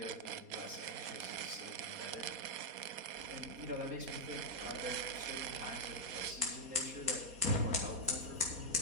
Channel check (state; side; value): late; left; 4.2 ms